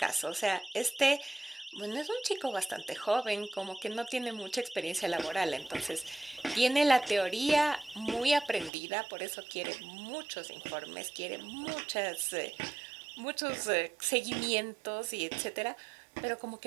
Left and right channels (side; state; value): left; drops out; at 8.7 s